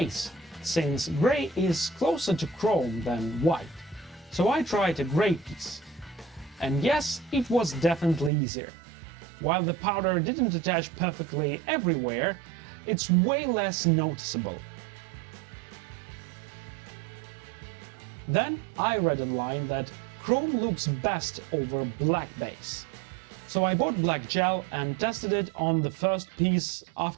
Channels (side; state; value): left; drops out; at 8.3 s